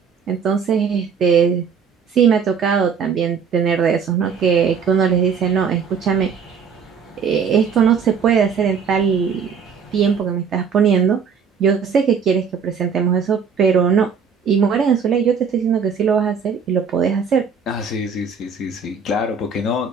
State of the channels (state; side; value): quieter; left; 6.2 dB